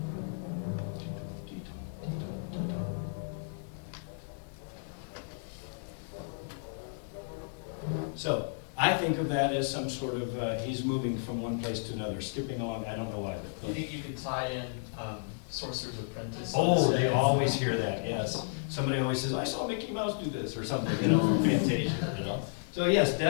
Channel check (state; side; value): silent; right; digital silence